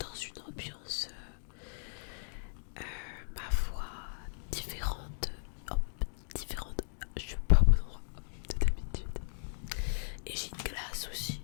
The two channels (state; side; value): silent; right; digital silence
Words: une ambiance, ma foi, différente. Hop, différente. Je suis pas au bon endroit de d'habitude. Et j'ai une glace aussi.